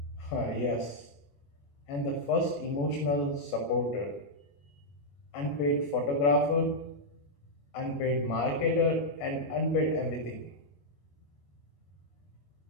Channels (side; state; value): right; late; 21 ms